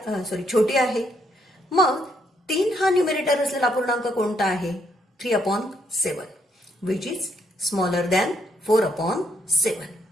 छोटी आहे. मग 3 हा न्यूमरेटर असलेला अपूर्णांक कोणता आहे? 3/7, विच इज स्मॉलर दॅन 4/7.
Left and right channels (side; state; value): both; normal; correlation 0.73